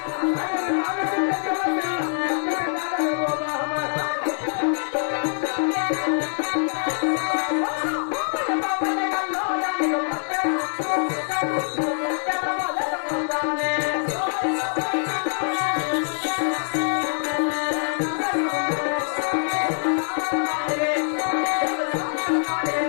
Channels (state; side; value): silent; right; digital silence